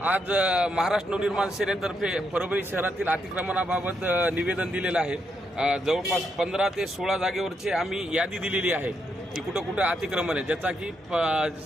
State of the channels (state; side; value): normal; both; correlation 0.79